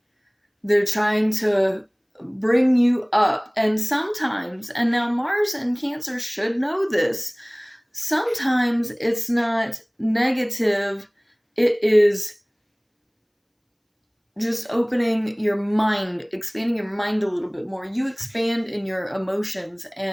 They're trying to bring you up. And sometimes, and now Mars and Cancer should know this, sometimes it's not negative, it is just opening your mind, expanding your mind a little bit more. You expand in your emotions,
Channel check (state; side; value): identical; both; correlation 1.00